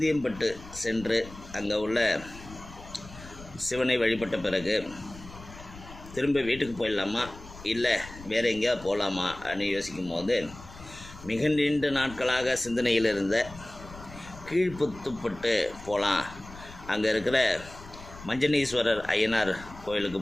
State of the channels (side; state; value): left; noise; rumble, 17 dB below the sound